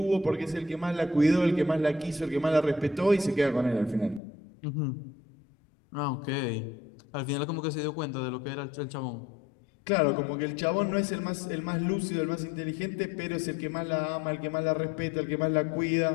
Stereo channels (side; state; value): right; drops out; at 4.2 s